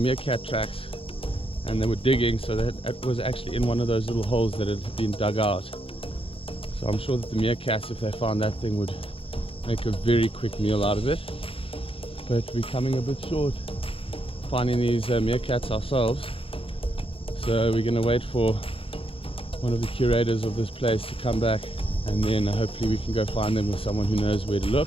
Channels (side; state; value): right; late; 0.27 ms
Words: meerkat tracks and they were digging, so that it was actually in one of those little holes that had been dug out. So I'm sure that the meerkats, if they found that thing, would make a very quick meal out of it. But we're coming a bit short finding these meerkats ourselves, so we're going to wait for one of the curators of this place to come back, and then hopefully we can go find them with someone who knows where to